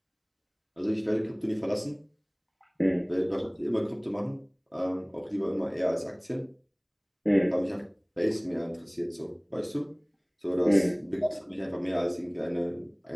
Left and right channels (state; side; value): identical; both; correlation 1.00